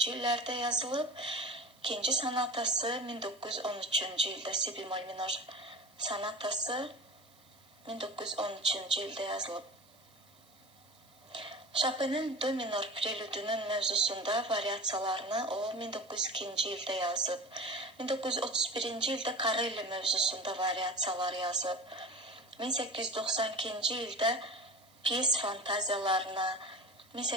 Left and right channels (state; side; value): noise; right; hiss, 29 dB below the sound